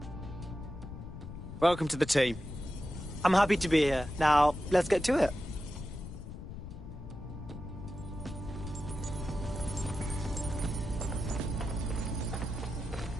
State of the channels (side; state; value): left; noise; rumble, 10 dB below the sound